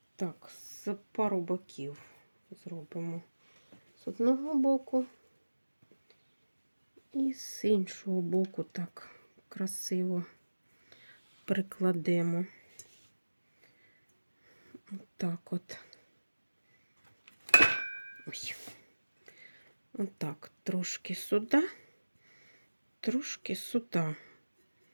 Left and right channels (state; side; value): inverted; both; correlation -1.00